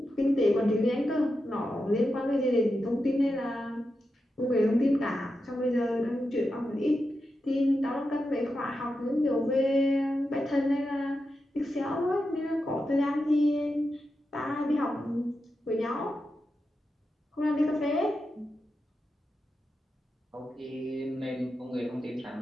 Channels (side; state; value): both; normal; correlation 0.89